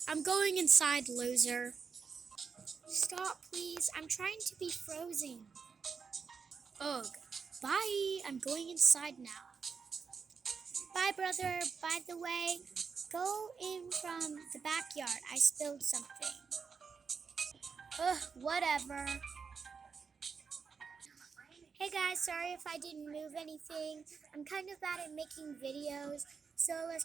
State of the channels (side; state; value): left; quieter; 5.7 dB